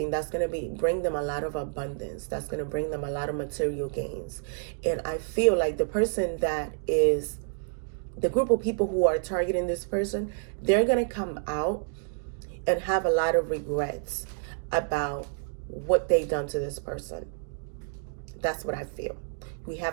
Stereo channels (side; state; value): left; silent; 59 dB below the other